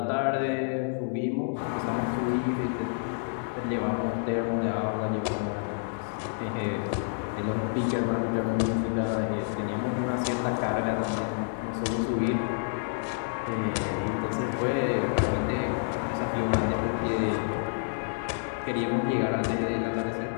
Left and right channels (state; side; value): silent; right; 58 dB below the other